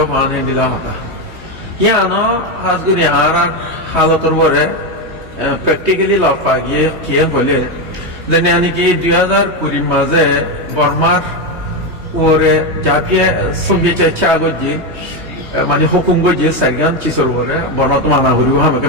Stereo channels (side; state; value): left; late; 3.2 ms